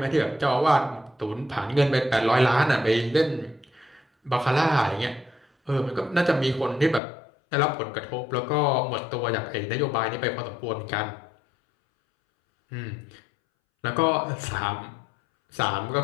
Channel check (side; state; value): right; drops out; at 7.0 s